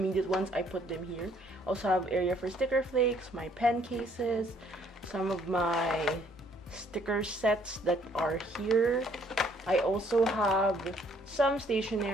ones I put them here. Also have area for sticker flakes, my pen cases, some of my sticker sets that are here. I also have some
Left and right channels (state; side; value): normal; both; correlation 0.64